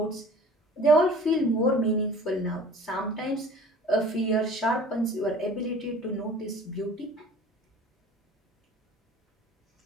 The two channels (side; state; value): both; normal; correlation 0.46